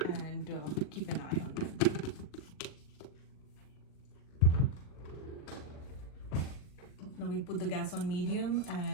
and keep an eye on them. Now we put the gas on medium,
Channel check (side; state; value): right; late; 39 ms